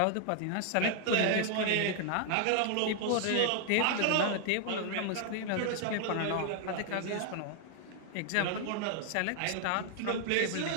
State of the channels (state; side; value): different; both; correlation 0.00